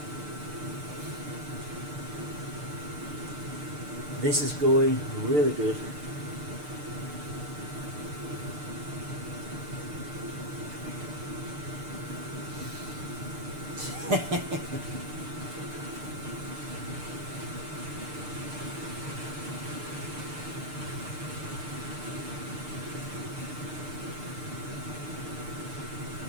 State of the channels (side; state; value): left; late; 6.7 ms